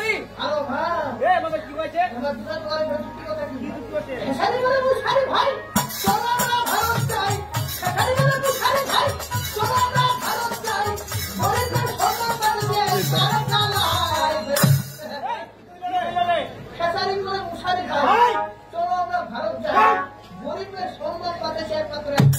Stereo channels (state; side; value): identical; both; correlation 1.00